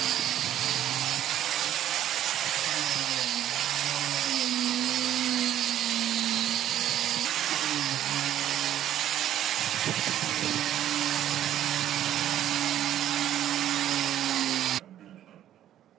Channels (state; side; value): quieter; left; 11.6 dB